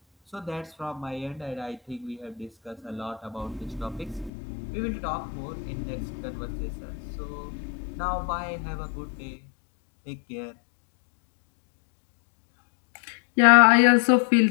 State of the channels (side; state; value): right; drops out; at 4.3 s